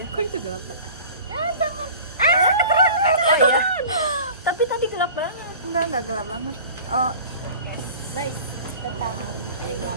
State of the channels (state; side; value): inverted; both; correlation -0.42